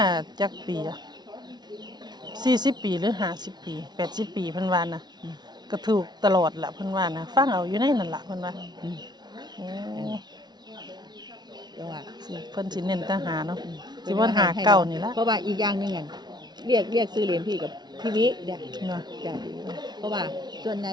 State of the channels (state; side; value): late; left; 0.20 ms